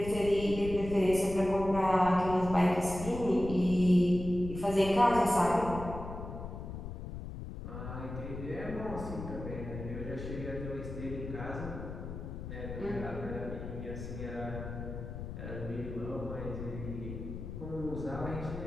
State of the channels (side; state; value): left; noise; rumble, 8 dB below the sound